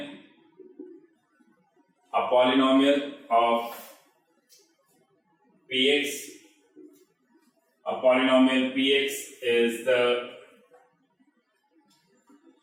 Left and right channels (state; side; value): identical; both; correlation 1.00